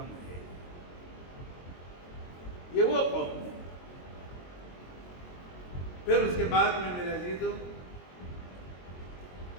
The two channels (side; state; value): right; late; 22 ms